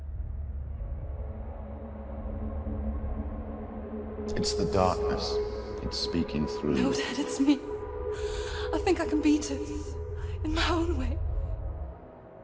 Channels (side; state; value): both; identical; correlation 1.00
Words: It's the darkness. It's speaking through No, you. Dad, it's me. I think I can beat it. In my own way.